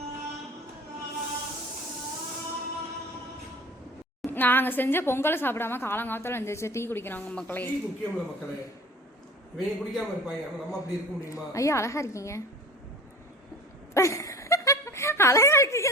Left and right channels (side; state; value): both; normal; correlation 0.41